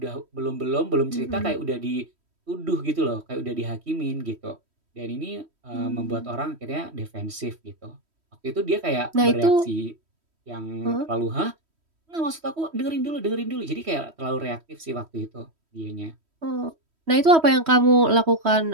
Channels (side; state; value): left; late; 3.1 ms